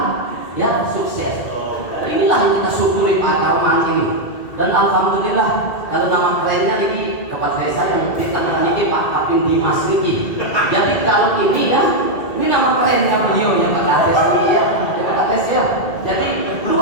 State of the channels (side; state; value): right; late; 2.3 ms